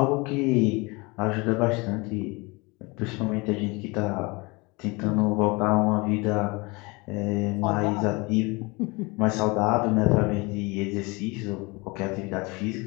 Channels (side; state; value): right; quieter; 26.2 dB